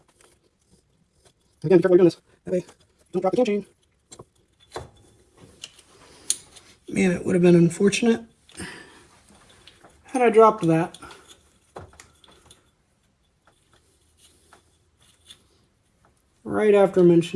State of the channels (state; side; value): identical; both; correlation 1.00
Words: Again, be careful while you're doing this. That way, don't drop the cam chain. Man, it would have been unfortunate had I dropped that. Right after